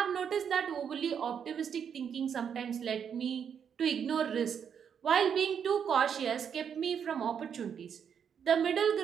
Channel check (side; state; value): left; quieter; 7.7 dB